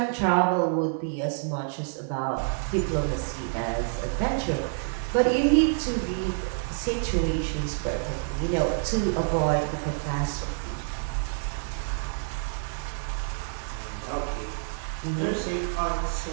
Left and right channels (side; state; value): left; silent; 60 dB below the other